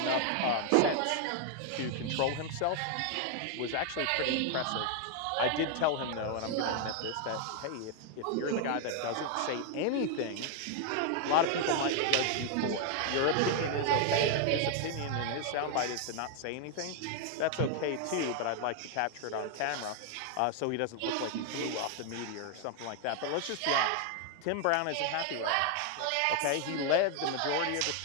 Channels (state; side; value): different; both; correlation 0.00